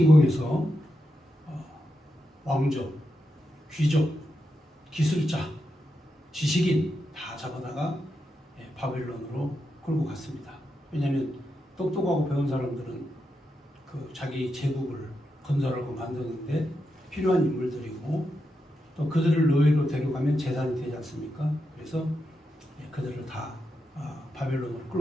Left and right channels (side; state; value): both; normal; correlation 0.86